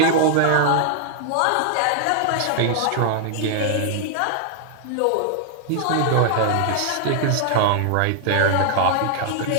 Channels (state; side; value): different; both; correlation 0.00